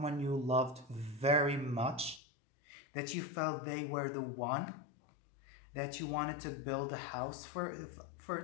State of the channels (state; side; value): drops out; right; at 2.2 s